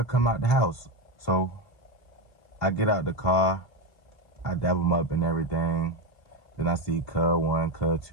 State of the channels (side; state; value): right; late; 2.7 ms